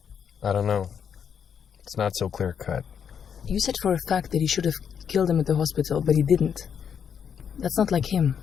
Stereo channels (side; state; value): right; quieter; 7.6 dB